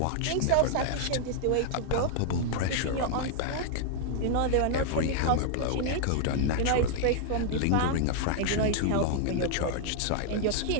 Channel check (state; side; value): different; both; correlation 0.00